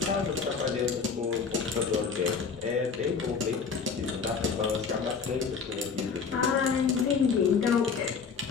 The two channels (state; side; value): quieter; right; 5.6 dB